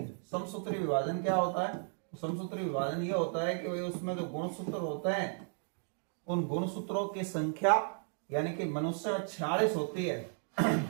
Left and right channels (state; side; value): silent; left; 55 dB below the other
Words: समसूत्री विभाजन क्या होता है? समसूत्री विभाजन यह होता है कि भाई उसमें जो गुणसूत्र होते हैं, उन गुणसूत्रों की संख्या यानी कि मनुष्य में 46 होती है।